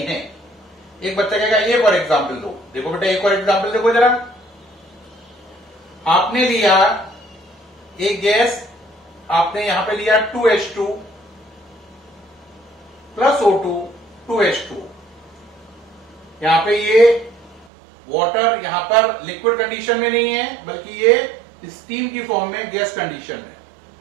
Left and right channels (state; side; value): drops out; left; at 17.7 s